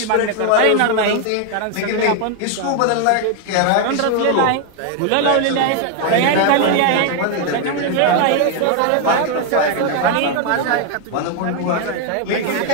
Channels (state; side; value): different; both; correlation 0.00